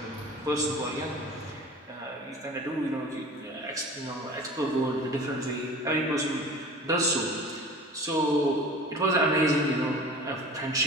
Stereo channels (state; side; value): normal; both; correlation 0.40